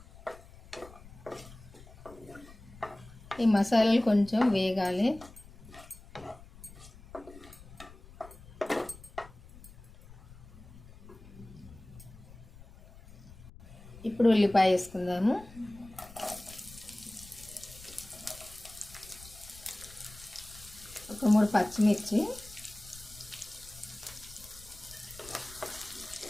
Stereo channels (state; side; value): noise; left; rumble, 19 dB below the sound